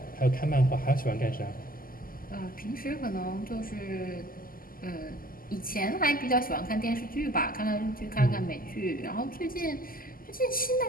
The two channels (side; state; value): right; late; 0.42 ms